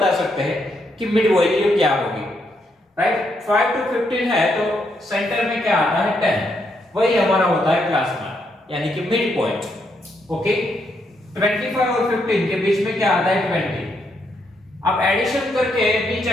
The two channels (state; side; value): normal; both; correlation 0.77